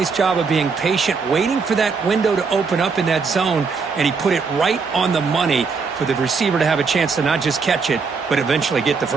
job of being patient, waiting for that window to open up in that zone, and he put it right on the money for the receiver to have a chance to not just catch it, but eventually get the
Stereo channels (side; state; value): left; quieter; 5.0 dB